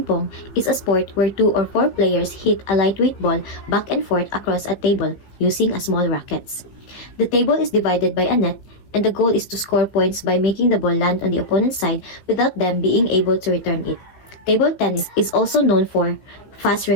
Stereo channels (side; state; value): right; late; 16 ms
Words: pong, is a sport where 2 or 4 players hit a lightweight ball back and forth across a table using a small rackets. The table is divided by a net, and the goal is to score points by making the ball land on the opponent's side without them being able to return it. Table tennis is also known for fast